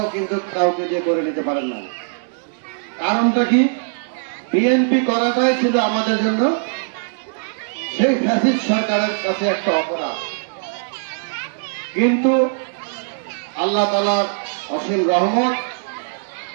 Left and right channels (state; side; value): silent; left; digital silence